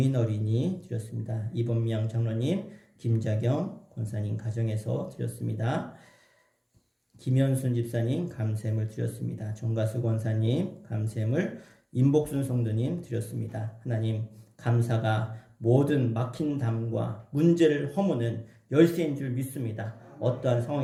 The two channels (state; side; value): identical; both; correlation 1.00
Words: 어린이 드렸습니다. 이범명 장로님, 김자경 권사님 가정에서 드렸습니다. 김현순 집사님 감샘을 드렸습니다. 정가수 권사님 감샘을, 임복순 성도님 드렸습니다. 하나님 감사가 모든 막힌 담과 문제를 허무는 열쇠인 줄 믿습니다. 어떠한